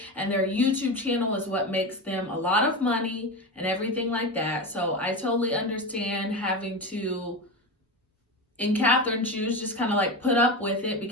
and their YouTube channel is what makes them a lot of money and everything like that. So I totally understand having to, in Catherine's shoes, just kind of like put up with it,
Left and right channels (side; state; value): both; normal; correlation 0.21